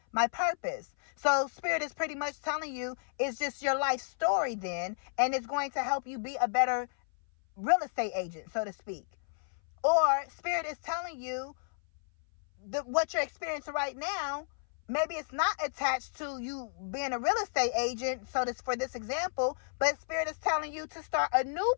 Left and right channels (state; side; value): silent; right; 56 dB below the other